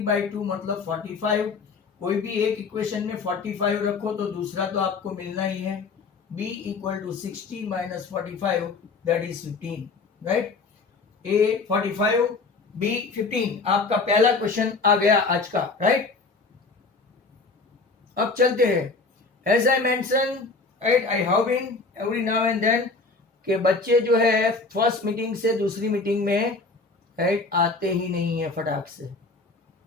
मतलब 45। कोई भी एक इक्वेशन में 45 रखो तो दूसरा तो आपको मिलना ही है। b equal to 60 minus 45 that is 15, right. a 45, b 15, आपका पहला क्वेश्चन आ गया आज का, राइट। अब चलते हैं। As I mention, right, I have been every now and then के बच्चे जो है फर्स्ट मीटिंग से दूसरी मीटिंग में, राइट, आते ही नहीं है फटाक से।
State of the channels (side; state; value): right; quieter; 4.0 dB